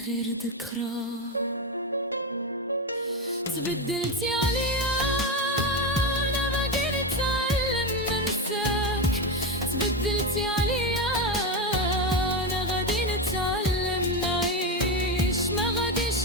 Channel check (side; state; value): both; normal; correlation 0.14